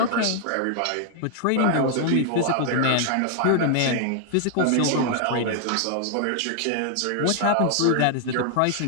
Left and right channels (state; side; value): different; both; correlation 0.00